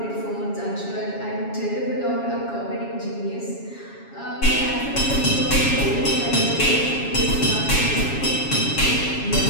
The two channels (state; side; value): late; right; 7.2 ms